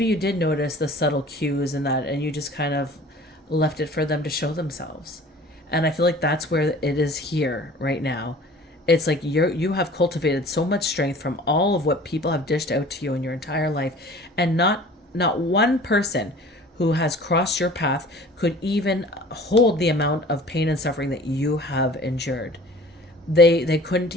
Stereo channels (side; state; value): both; normal; correlation 0.46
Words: you did notice the subtle cues and that, and you just kind of left it for them to show themselves. And I feel like that's where it is here right now. It's like you have cultivated so much strength from all of what people have dished out to you in your entire life, and not one person who has crossed your path could even hold the amount of pain and suffering that you have endured. They couldn't